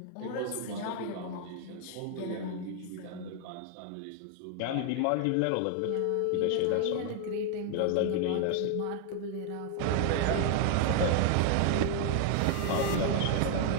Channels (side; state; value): both; different; correlation 0.00